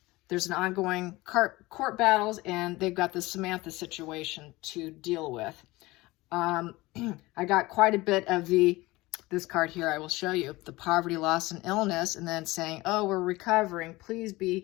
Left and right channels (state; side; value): quieter; right; 20.5 dB